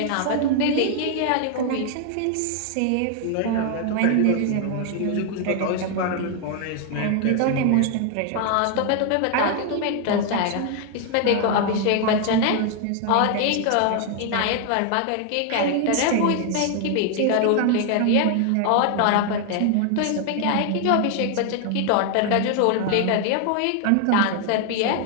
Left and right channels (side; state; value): both; different; correlation 0.00